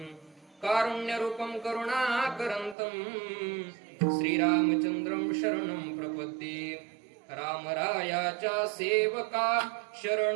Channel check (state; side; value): drops out; left; at 2.8 s